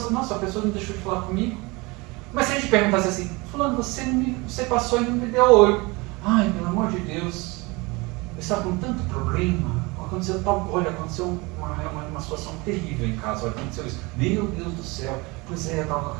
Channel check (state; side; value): quieter; left; 25.1 dB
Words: diz, nossa, a pessoa não deixou de falar comigo. Mas se a gente perguntasse assim, fulano, você passou e não me deu oi. Ai, pelo amor de Deus, eu estava com tanto problema, aconteceu uma situação terrível em casa, olha, aconteceu isso. Meu Deus do céu, pois é, eu estava com